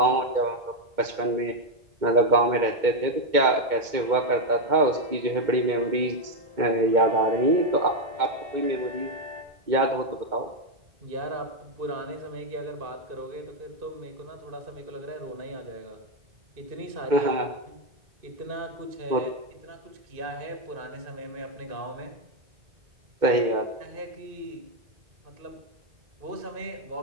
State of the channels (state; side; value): late; left; 2.2 ms